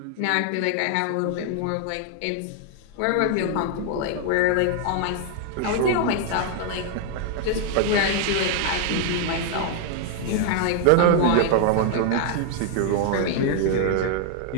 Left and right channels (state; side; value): different; both; correlation 0.00